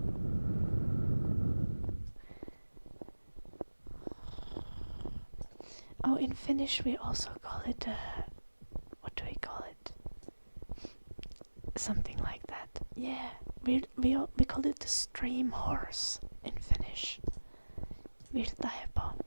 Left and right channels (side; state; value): both; inverted; correlation -1.00